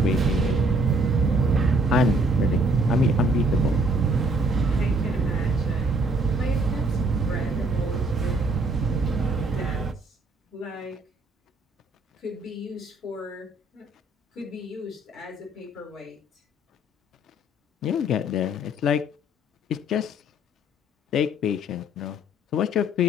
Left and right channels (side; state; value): both; normal; correlation 0.63